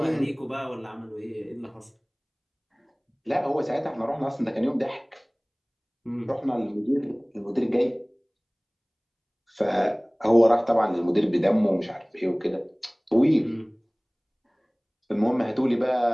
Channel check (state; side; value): identical; both; correlation 1.00